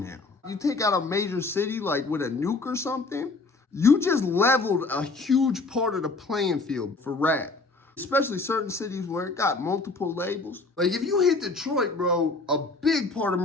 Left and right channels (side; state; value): right; quieter; 3.6 dB